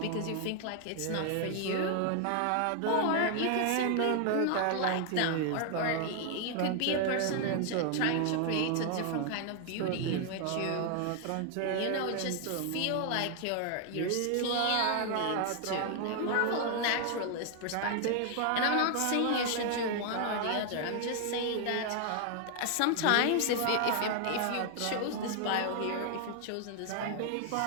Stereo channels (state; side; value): different; both; correlation 0.00